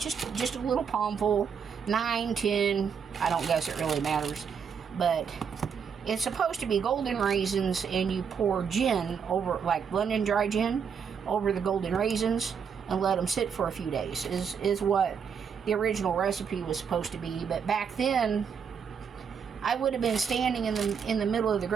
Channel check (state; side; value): quieter; left; 6.8 dB